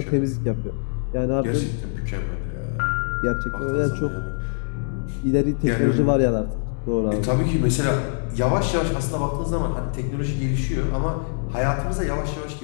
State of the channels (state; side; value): silent; right; 63 dB below the other